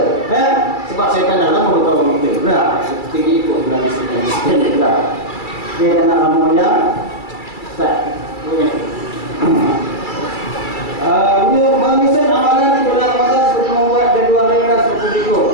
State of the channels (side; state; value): right; late; 2.3 ms